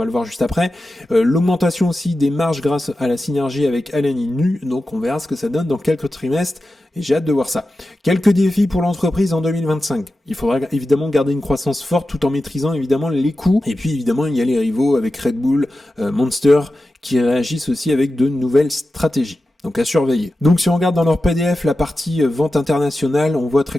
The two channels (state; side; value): normal; both; correlation 0.93